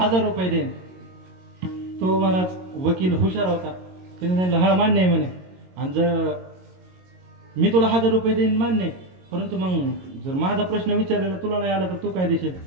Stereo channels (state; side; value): late; left; 22 ms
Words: रुपये देईन. तो महाराज वकील हुशार होता. त्याने सांगितलं हा मान्य आहे म्हणे. आणि जर मी तुला 1000 रुपये देईन मान्य, परंतु मग जर माझा प्रश्न विचारलेला तुला नाही आला तर तू काय देशील?